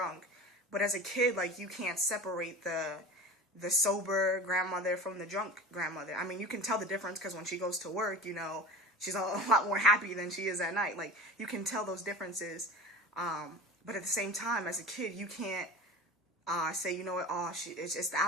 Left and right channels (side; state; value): both; normal; correlation 0.35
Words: But as a kid, like, you can't separate the sober grandmother from the drunk grandmother. I mean, you can tell the difference because when she goes to work, she's a lot more happy than she is at night. Like, you can tell those differences. But at the same time, as a kid, you can't say, you know what, it's just the